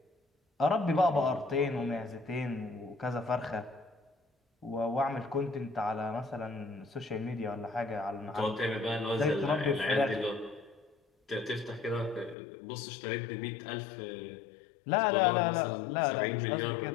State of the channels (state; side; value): drops out; right; at 12.4 s